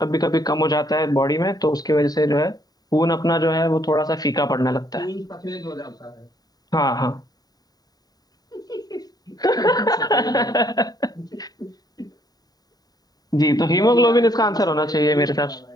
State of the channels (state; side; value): late; right; 0.18 ms